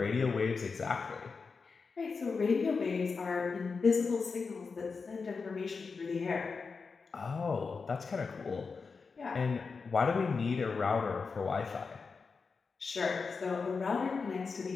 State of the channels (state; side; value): quieter; right; 4.9 dB